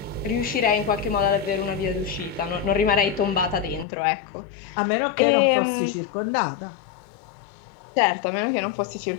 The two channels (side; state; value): right; drops out; at 3.9 s